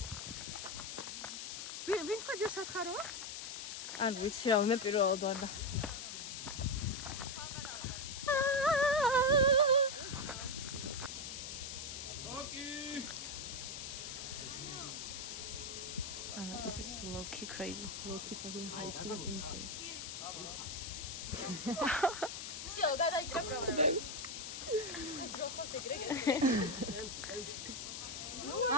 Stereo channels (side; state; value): left; noise; hiss, 6 dB below the sound